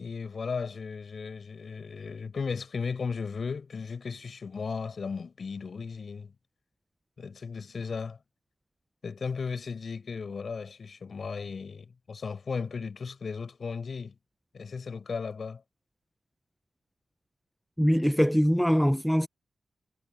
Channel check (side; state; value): both; normal; correlation 0.97